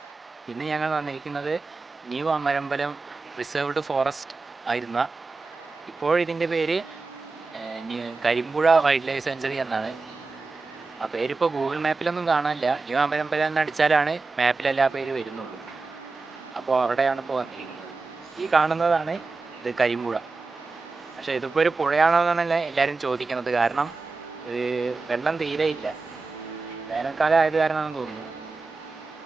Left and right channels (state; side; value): quieter; left; 4.0 dB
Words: ഇന്ന് ഞങ്ങൾ വന്നിരിക്കുന്നത് ന്യൂ അമരമ്പലം റിസർവ്ഡ് ഫോറസ്റ്റ് ആയിരുന്ന ഇപ്പോഴിതിൻ്റെ പേര് കരിമ്പുഴ വൈൽഡ് ലൈഫ് സെഞ്ചുറി എന്നാണ്. ആ പേരിപ്പോൾ ഗൂഗിൾ മാപ്പിലൊന്നും കാണാനില്ല. ന്യൂ അമരമ്പലം എന്ന് അടിച്ചാലാണ് മാപ്പിലെല്ലാ പേര് വരുന്നുള്ളൂ. അപ്പോൾ അവിടെയാണ് ഇപ്പോൾ വന്നിരിക്കുന്നത്. ഈ കാണുന്നതാണ് ഇത് കരിമ്പുഴ. പക്ഷേ ഇതിപ്പോൾ ഒരു പുഴയാണോ എന്നാണല്ലേ എല്ലാവരും ചോദിക്കുന്നത്. കാരണം വെള്ളം തീരെ ഇല്ല. വേനൽക്കാലം ആയത് കാരണമാണെന്ന് തോന്നുന്നു.